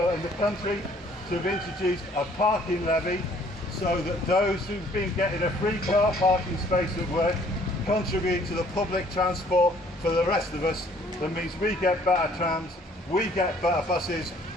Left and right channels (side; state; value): both; normal; correlation 0.59